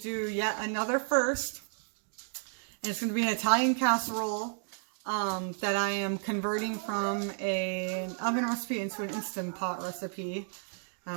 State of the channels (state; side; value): silent; left; 56 dB below the other